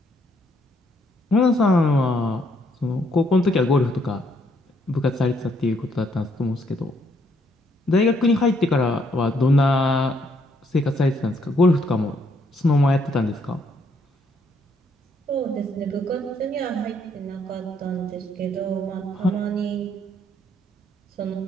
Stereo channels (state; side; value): normal; both; correlation 0.71